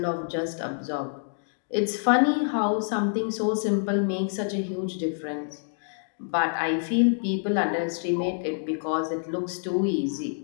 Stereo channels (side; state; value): right; silent; digital silence